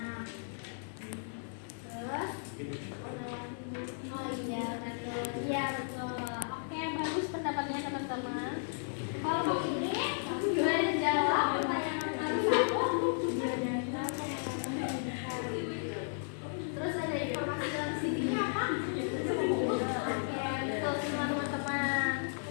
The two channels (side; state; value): right; silent; 55 dB below the other